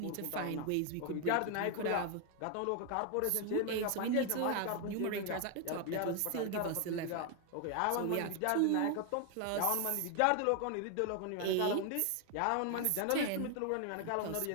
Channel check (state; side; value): different; both; correlation 0.00